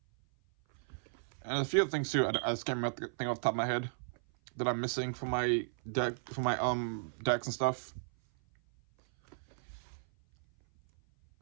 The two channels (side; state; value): left; silent; 55 dB below the other